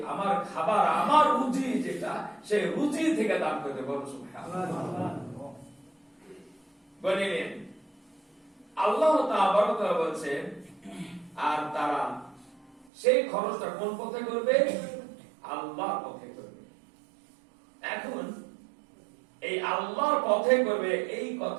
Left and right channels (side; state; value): left; drops out; at 12.9 s